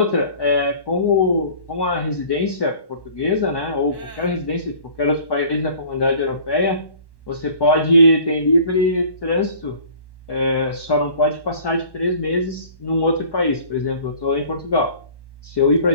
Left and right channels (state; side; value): late; right; 1.1 ms